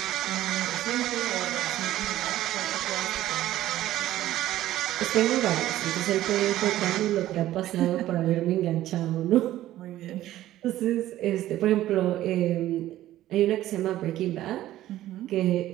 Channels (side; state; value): left; quieter; 14.1 dB